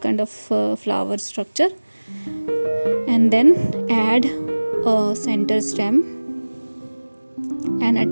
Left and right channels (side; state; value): both; inverted; correlation -1.00